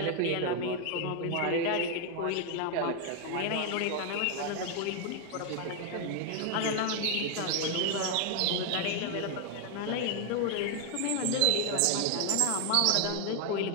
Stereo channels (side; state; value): both; different; correlation 0.01